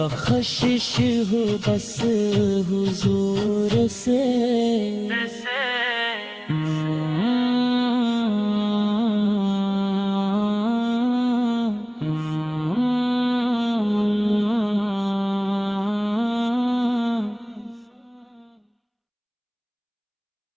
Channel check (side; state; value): both; identical; correlation 1.00